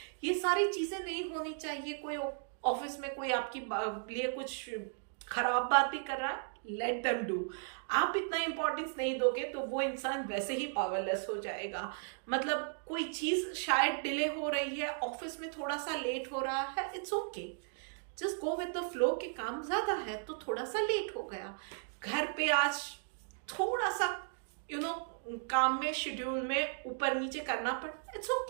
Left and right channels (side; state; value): left; silent; digital silence